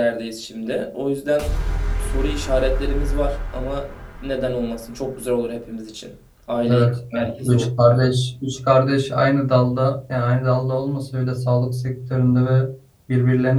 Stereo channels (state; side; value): identical; both; correlation 1.00